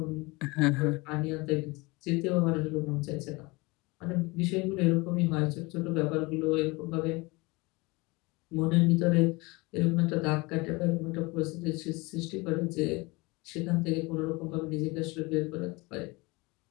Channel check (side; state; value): right; quieter; 24.7 dB